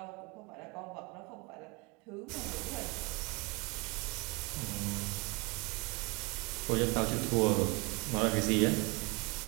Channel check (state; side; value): quieter; left; 27.7 dB